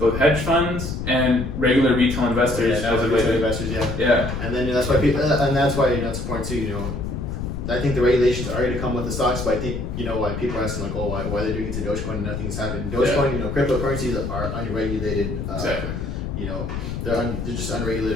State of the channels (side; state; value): left; noise; rumble, 5 dB below the sound